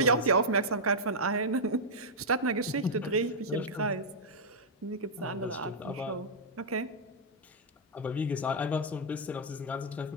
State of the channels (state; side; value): normal; both; correlation -0.07